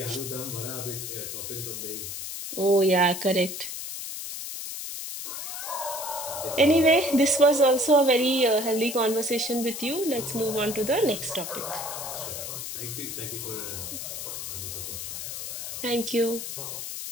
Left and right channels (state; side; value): noise; left; hiss, 6 dB below the sound